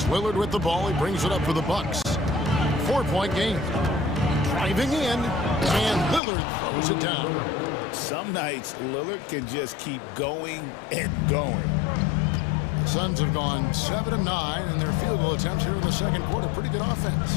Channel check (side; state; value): right; drops out; at 6.2 s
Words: Lillard with the ball. He brings it up for the Bucks. 4-point game. Driving in, and Lillard throws it down. Some nights, Lillard can just keep going and going. The Suns have gone 7 of 9 in their field goal attempts here in the second quarter. Pretty good